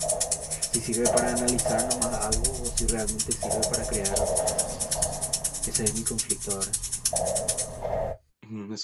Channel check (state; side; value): identical; both; correlation 1.00